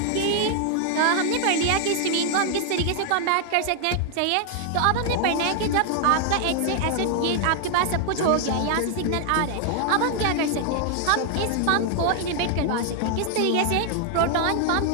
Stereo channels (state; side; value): different; both; correlation 0.00